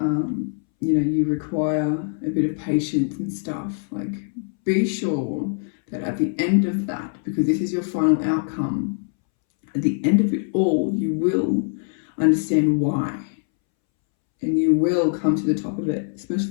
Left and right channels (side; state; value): right; silent; 63 dB below the other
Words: you require a bit of patience and stuff, like, be sure that at the end of that, because this is your final outcome, at the end of it all, you will understand why, and you will come to the top of it,